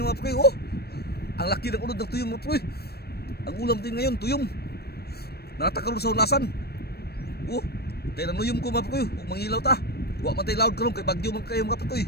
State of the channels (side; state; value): right; late; 0.47 ms